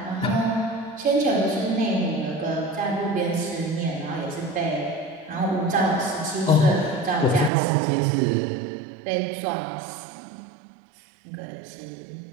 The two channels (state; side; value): drops out; left; at 7.5 s